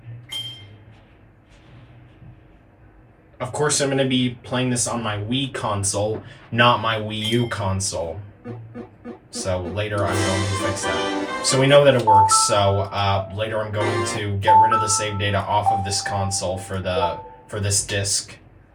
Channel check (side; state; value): both; identical; correlation 1.00